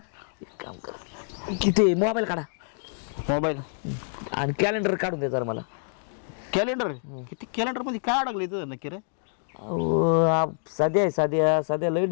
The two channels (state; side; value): silent; right; digital silence